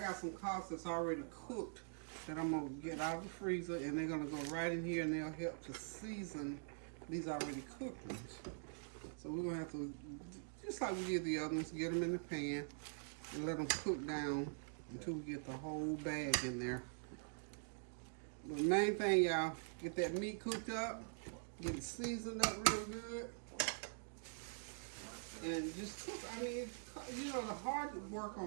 some collards that's already cooked that I'm gonna get out of the freezer, and they're gonna go right in here, and they'll help to season these already cooked ones. So we're gonna have to, just like we did the other ones, get them in the pan and let them cook down until we get the whole bag in there. But the main thing, y'all, get that meat cooked up, get it seasoned up real good, and just cook. I mean, you know, the hard work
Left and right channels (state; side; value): silent; left; digital silence